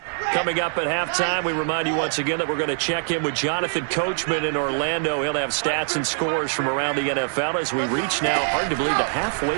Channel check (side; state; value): left; silent; digital silence